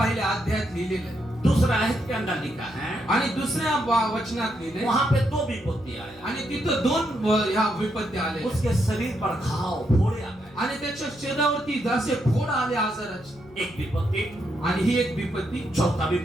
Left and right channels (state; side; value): noise; left; hum, 25 dB below the sound